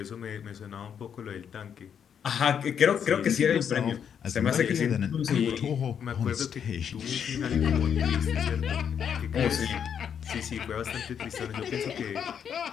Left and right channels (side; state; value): right; quieter; 8.0 dB